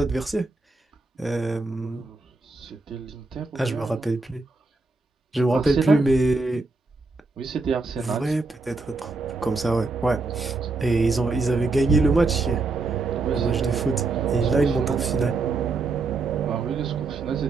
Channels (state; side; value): quieter; left; 3.6 dB